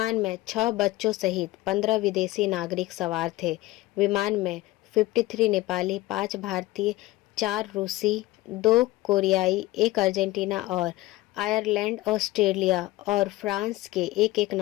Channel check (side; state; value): right; quieter; 18.1 dB